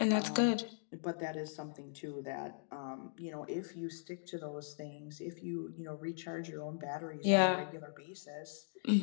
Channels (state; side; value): silent; right; digital silence